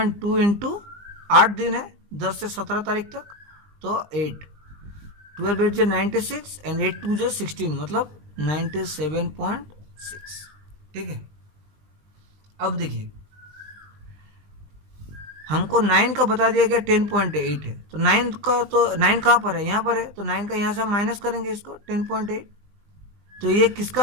इंटू 8 दिन है 10 से 17 तारीख तक, तो 8 12 8 जो 96 एंड 8 2 जो 16, मतलब 97.6। ठीक है, अब देखिए हमको 9 का बता दिया गया 10.8 है, तो 9 का तो 9 कहाँ पर है, यहाँ पर है, तो 9 का यहाँ से हम माइनस करेंगे इसको 10.8, तो ये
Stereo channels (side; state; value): left; late; 20 ms